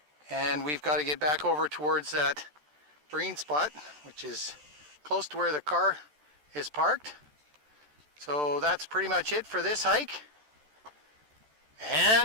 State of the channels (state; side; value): late; left; 13 ms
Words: and we've got to get back over towards that green spot, which is close to where the car is parked. So that's pretty much it for this hike.